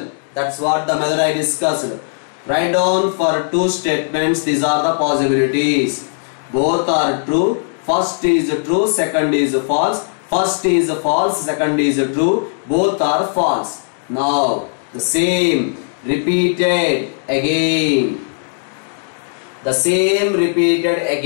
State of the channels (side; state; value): right; silent; 68 dB below the other